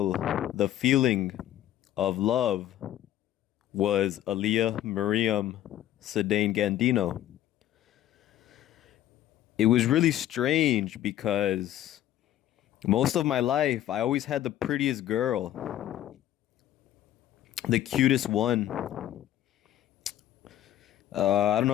the feeling of love was Aaliyah Miriam Sedain Gandino. It was really strange because most of my life I always had the prettiest girl, the cutest one. I don't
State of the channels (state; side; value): quieter; right; 12.6 dB